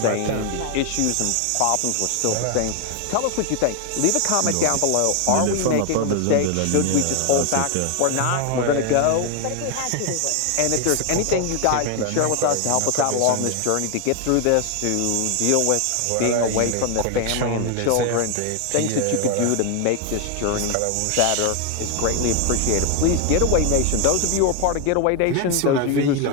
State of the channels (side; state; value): both; different; correlation 0.01